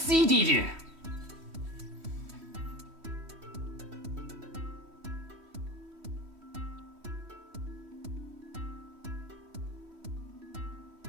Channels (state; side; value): late; left; 3.1 ms